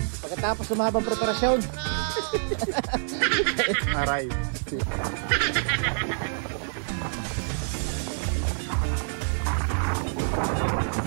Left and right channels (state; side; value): silent; left; 57 dB below the other